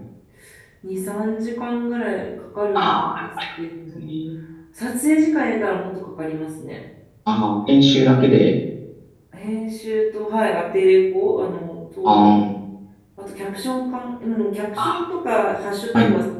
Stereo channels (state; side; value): identical; both; correlation 1.00